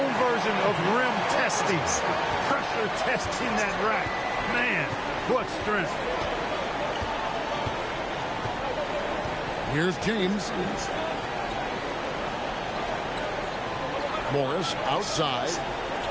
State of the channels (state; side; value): identical; both; correlation 1.00